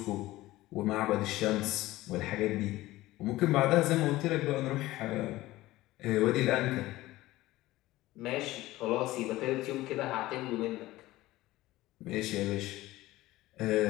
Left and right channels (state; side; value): quieter; right; 17.4 dB